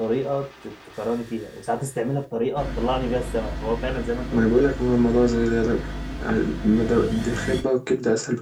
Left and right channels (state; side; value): identical; both; correlation 1.00